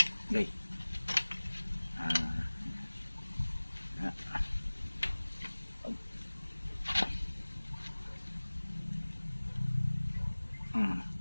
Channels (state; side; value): inverted; both; correlation -1.00